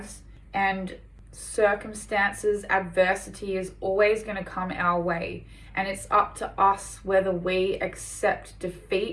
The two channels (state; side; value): identical; both; correlation 1.00